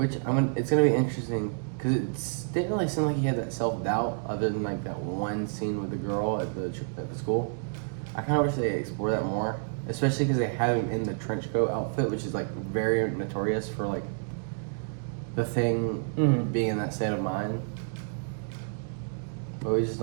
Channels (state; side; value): silent; left; digital silence